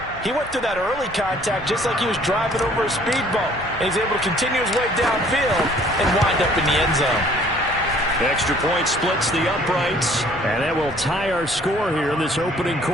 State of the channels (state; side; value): normal; both; correlation 0.57